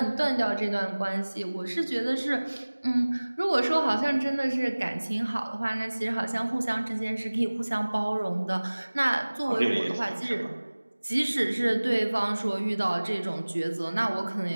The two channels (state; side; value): inverted; both; correlation -1.00